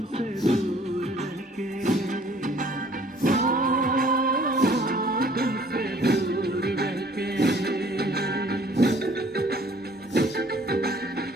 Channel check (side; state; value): both; normal; correlation 0.57